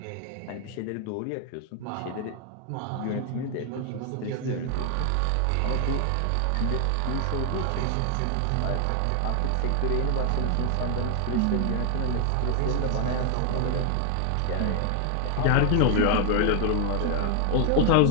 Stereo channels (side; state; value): both; different; correlation 0.00